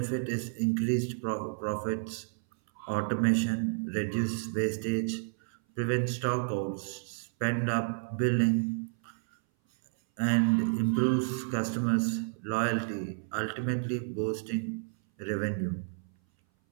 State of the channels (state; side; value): silent; left; 57 dB below the other